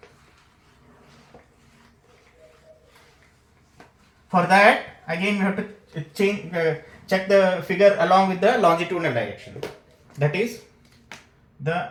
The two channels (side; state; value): both; identical; correlation 1.00